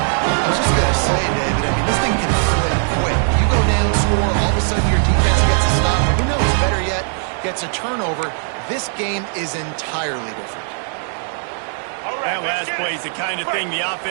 was just going to say, David, I mean, this thing can flip quick. You go down, score, all of a sudden your defense gets a stop. Who knows, better yet, gets a turnover. This game is entirely different. That last play is the kind of thing the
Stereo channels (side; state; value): left; silent; 58 dB below the other